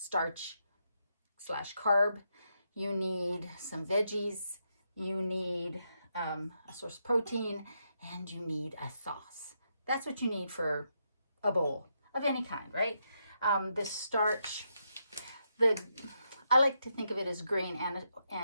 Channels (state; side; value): inverted; both; correlation -0.81